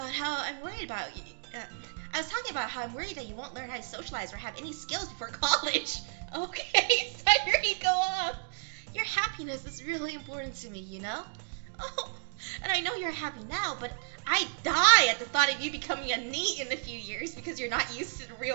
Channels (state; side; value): silent; left; digital silence